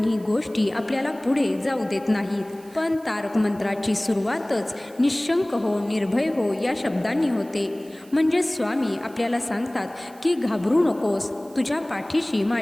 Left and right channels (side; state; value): right; noise; hiss, 25 dB below the sound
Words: गोष्टी आपल्याला पुढे जाऊ देत नाहीत. पण तारक मंत्राची सुरुवातच निशंक हो, निर्भय हो या शब्दांनी होते. म्हणजे स्वामी आपल्याला सांगतात की घाबरू नकोस, तुझ्या पाठीशी